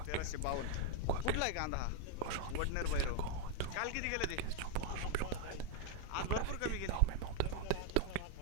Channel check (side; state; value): both; different; correlation 0.01